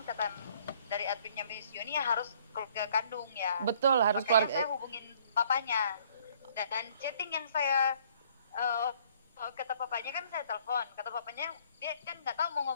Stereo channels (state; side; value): inverted; both; correlation -0.60